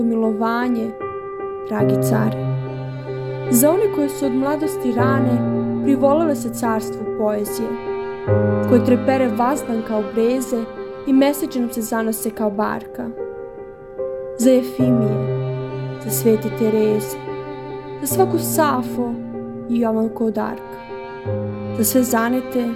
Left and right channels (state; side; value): identical; both; correlation 1.00